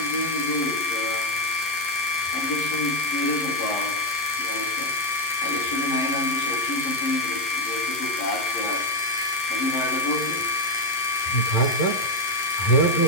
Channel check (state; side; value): late; right; 11 ms